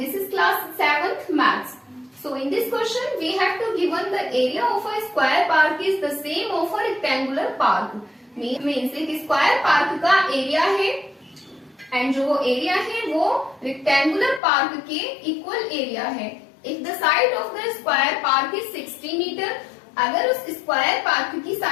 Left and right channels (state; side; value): drops out; right; at 14.4 s